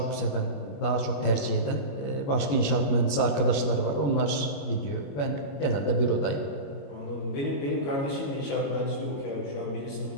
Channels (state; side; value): late; right; 21 ms